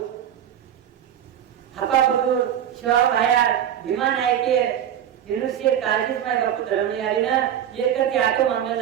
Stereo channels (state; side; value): quieter; left; 10.0 dB